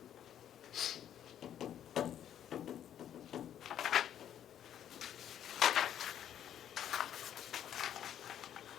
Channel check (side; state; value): right; quieter; 10.2 dB